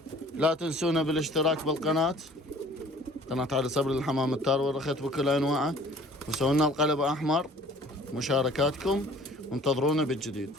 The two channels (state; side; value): normal; both; correlation 0.51